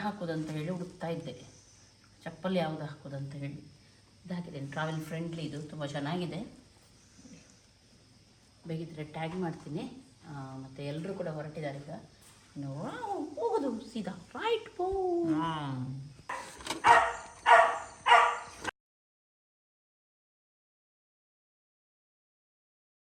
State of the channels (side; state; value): both; identical; correlation 1.00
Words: ಹಾಕೋದಂತ ಹೇಳಿ ಹುಡುಕ್ತಾ ಇದ್ದೆ. ಚಪ್ಪಲಿ ಯಾವುದು ಹಾಕೋದಂತ ಹೇಳಿ ಇದು ಹಾಕಿದ್ದೇನೆ. ಟ್ರಾವೆಲ್ ಫ್ರೆಂಡ್ಲಿ, ಇದು ತುಂಬ ಚೆನ್ನಾಗಿದೆ. ಬೇಕಿದ್ರೆ ಟ್ಯಾಗ್ ಮಾಡ್ತೀನಿ. ಮತ್ತು ಎಲ್ಲರೂ ಕೂಡ ಹೊರಟಿದ್ದಾರೆ ಈಗ. ಹೋಗೋದು ಸೀದಾ ರೈಟ್ ಪೋ.